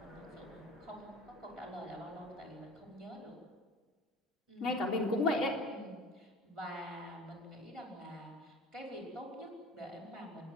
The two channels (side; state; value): both; normal; correlation 0.40